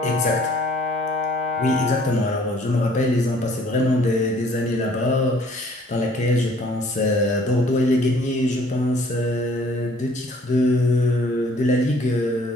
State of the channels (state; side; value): normal; both; correlation 0.58